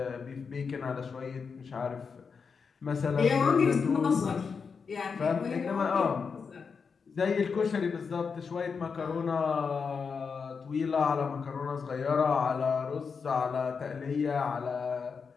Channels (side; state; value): right; quieter; 5.6 dB